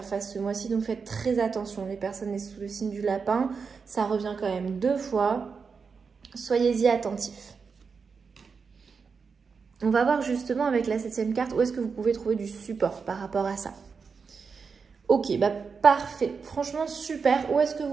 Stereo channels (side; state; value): left; quieter; 5.4 dB